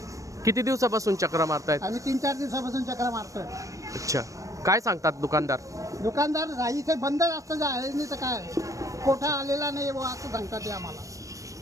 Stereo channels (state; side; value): late; left; 0.16 ms